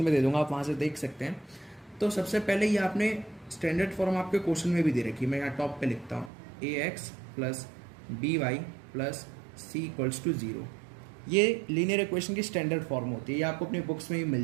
दे दूंगा, आप वहाँ से देख सकते हैं। तो सबसे पहले ये आपने स्टैंडर्ड फॉर्म आपके क्वेश्चन में भी दे रखी है। मैं यहाँ टॉप पे लिखता हूँ ax plus B Y plus C equals to 0। ये लीनियर इक्वेशन की स्टैंडर्ड फॉर्म होती है, ये आपको अपनी बुक्स में भी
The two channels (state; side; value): drops out; left; at 6.3 s